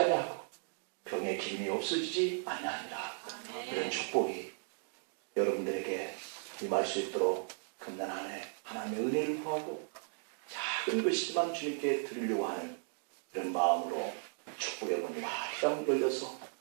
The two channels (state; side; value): silent; left; 54 dB below the other